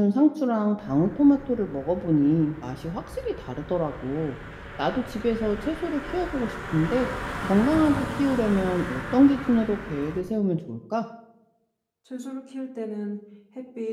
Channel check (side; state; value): both; identical; correlation 1.00